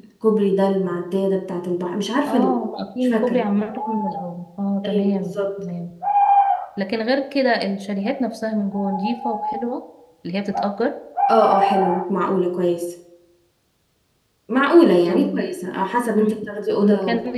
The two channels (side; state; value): both; identical; correlation 1.00